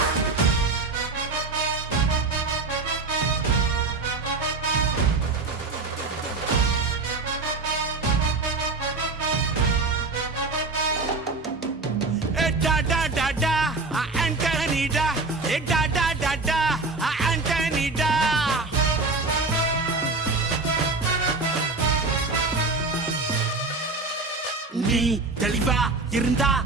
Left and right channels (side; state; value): left; quieter; 3.7 dB